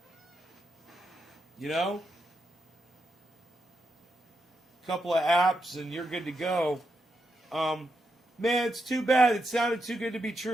You know? A couple of apps and you're good to go. Man, it's too bad. It sounded too good to be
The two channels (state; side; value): normal; both; correlation 0.84